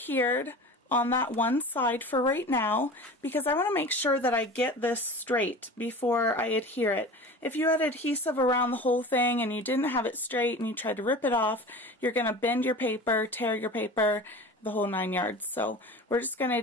on that one side for right now, because I want to make sure that I get this straight before I adhere it. If you had adhesive around the whole thing and you didn't have it straight and you tried to rip it off, you're going to bend your paper, tear your paper, the whole 9 yards. So we're just going to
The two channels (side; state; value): both; normal; correlation 0.36